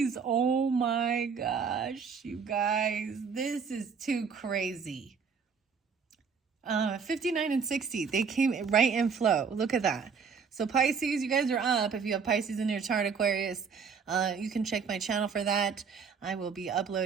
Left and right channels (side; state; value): left; quieter; 6.0 dB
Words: Oh my gosh, you guys. This is too crazy. 59 and 60. They came right in flow. Look at that. So Pisces, you guys are up. If you have Pisces in your chart, Aquarius, you can check my channel for that. I will be